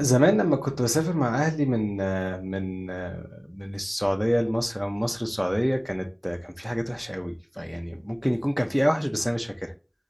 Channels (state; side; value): identical; both; correlation 1.00